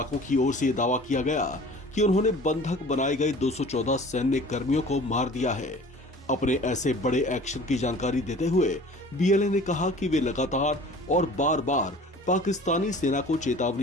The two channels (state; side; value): normal; both; correlation 0.45